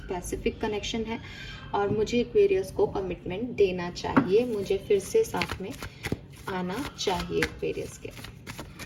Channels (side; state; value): both; identical; correlation 1.00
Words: कनेक्शन है, और मुझे एक्वेरियस को कमिटमेंट देना चाहिए, मुझे फिर से साथ में आना चाहिए एक्वेरियस के।